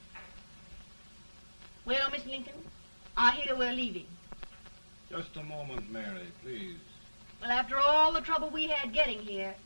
Well, Miss Lincoln, I hear we're leaving. Just a moment, Mary, please. Well, after all the trouble we had getting here,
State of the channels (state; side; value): inverted; both; correlation -1.00